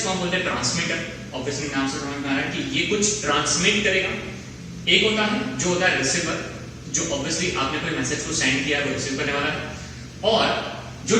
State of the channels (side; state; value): both; identical; correlation 1.00